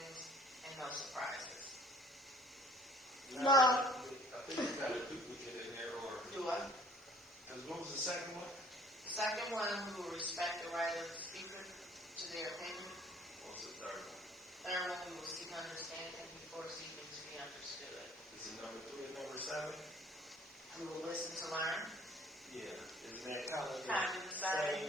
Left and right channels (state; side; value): normal; both; correlation 0.55